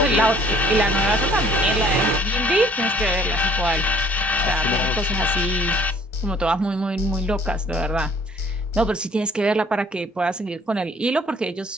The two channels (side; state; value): both; normal; correlation 0.57